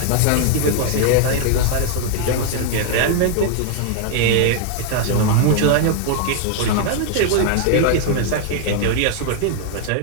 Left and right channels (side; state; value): both; different; correlation 0.00